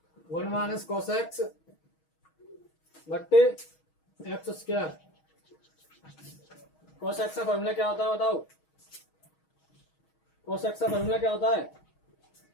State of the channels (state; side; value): late; right; 6.3 ms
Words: 1 minus cos x बट्टे एक्स स्क्वायर। कॉस एक्स का फॉर्मूला क्या होता है बताओ, कॉस एक्स का फॉर्मूला क्या होता है,